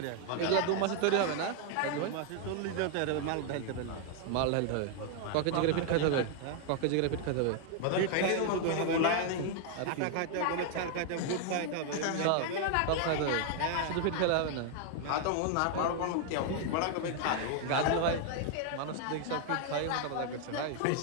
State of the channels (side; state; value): both; different; correlation 0.00